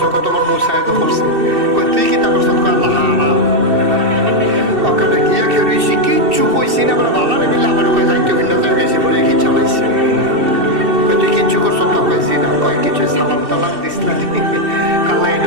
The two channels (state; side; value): late; left; 2.7 ms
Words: কত তোমার মুসায় তো করছে, কয় তুই কি তা করছো, কয় আল্লাহ হারা ওখানে গিয়া খেয়ে রয়েছি, কিচ্ছু কইছি না, আমরা ভালো মিলে আমার কয় যাইতে ভিন্ন যায় গেছি বলে কি চালাইছে, কয় তুই কিচ্ছু করছো তো, কয়েছি না, কয় কিছু সালাম টালাম দিস না, কাল্লা